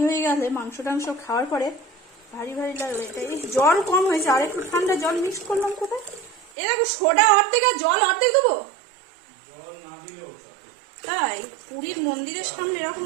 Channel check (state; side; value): drops out; left; at 6.5 s